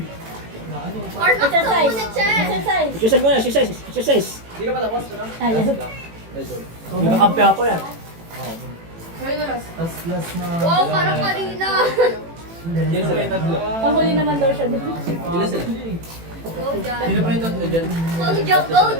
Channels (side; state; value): left; late; 18 ms